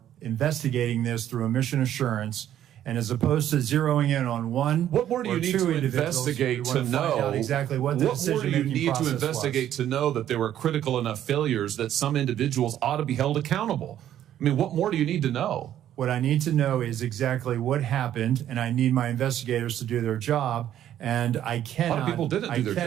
investigating this through a mission assurance. And as opposed to zeroing in on one, what more do you need to investigate to know exactly what the decision-making process was? What more do you need to investigate to know that there were critical enough failures that some individuals ought to be held accountable? I mean, what more do you need to know? What I need to know is exactly what happened, and I need my investigators to do their job. And I cannot. A lot of people didn't do their jobs. I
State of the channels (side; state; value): left; quieter; 11.3 dB